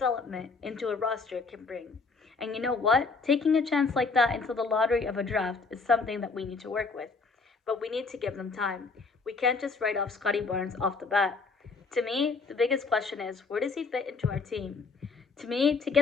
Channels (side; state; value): right; quieter; 4.4 dB